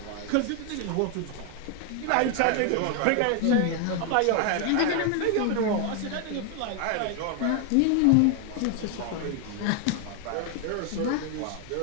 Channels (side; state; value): both; different; correlation 0.00